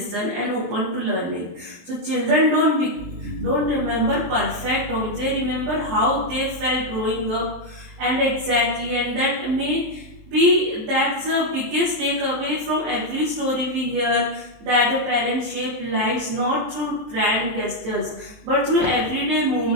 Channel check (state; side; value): late; left; 23 ms